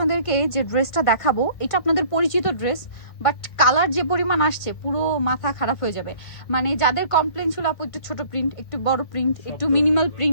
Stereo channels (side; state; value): right; late; 1.5 ms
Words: যে ড্রেসটা দেখাবো এটা আপনাদের পরিচিত ড্রেস, বাট কালার যে পরিমাণ আসছে পুরো মাথা খারাপ হয়ে যাবে। মানে যাদের কমপ্লেন ছিল আপু একটু ছোট প্রিন্ট, একটু বড় প্রিন্ট, একটু মিনিমাল